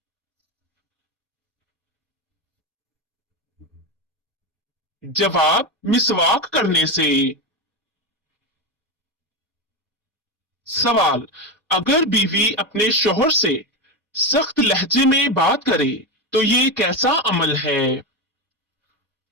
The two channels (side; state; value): both; normal; correlation 0.16